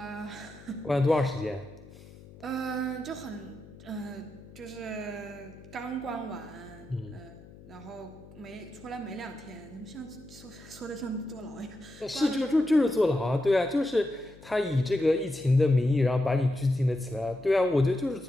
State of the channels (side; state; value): left; noise; hum, 20 dB below the sound